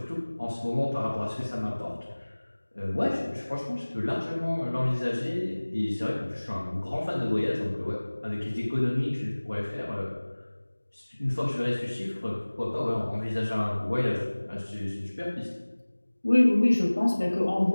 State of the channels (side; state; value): both; inverted; correlation -1.00